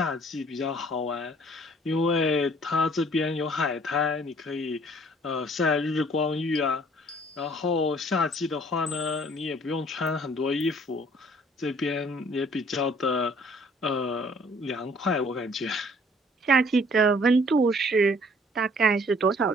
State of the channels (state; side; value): normal; both; correlation 0.58